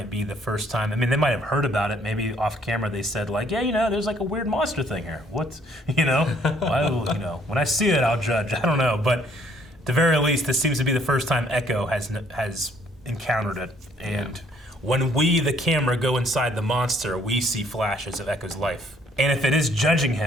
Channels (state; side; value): normal; both; correlation 0.64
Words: be the first time. I mean, they might have heard about it. Maybe off camera they said like, yeah, you know, there's like a weird monster thing here. What, you know? You know, when I see it, I'll judge. I don't know. But at the very least, this seems to be the first time Echo has encountered it. And when we, the camera, go inside the monster, we see flashes of Echo's life. And if it is judging